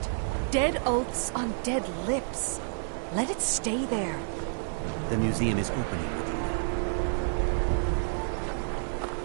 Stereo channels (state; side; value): silent; left; 58 dB below the other